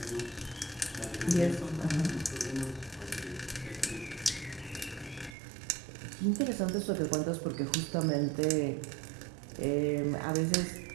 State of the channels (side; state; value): left; drops out; at 5.4 s